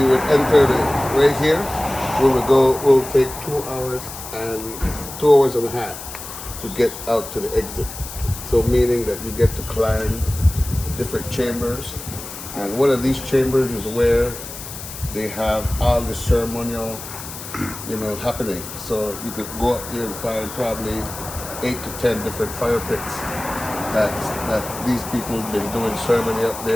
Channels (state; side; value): noise; left; hiss, 11 dB below the sound